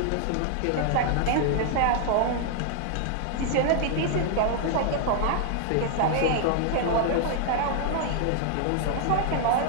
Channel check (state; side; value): different; both; correlation 0.00